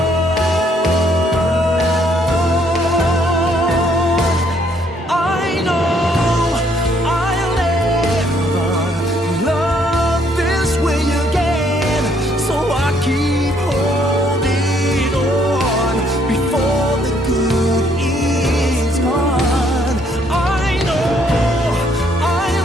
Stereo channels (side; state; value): both; normal; correlation 0.67